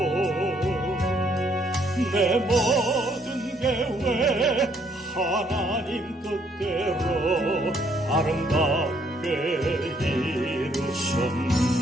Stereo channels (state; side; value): normal; both; correlation 0.68